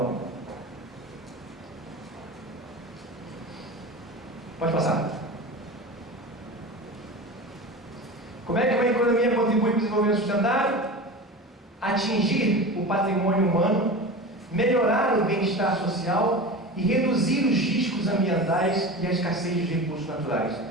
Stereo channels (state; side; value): normal; both; correlation 0.30